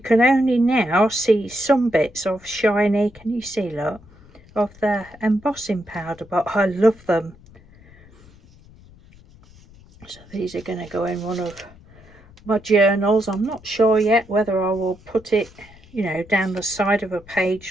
only now see some bits of shiny, can you see, look, of the embossing powder, but I love them. So these are going to go in one of my journals. I'm not sure yet whether I will put it, you know, down the side of a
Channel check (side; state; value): left; noise; rumble, 24 dB below the sound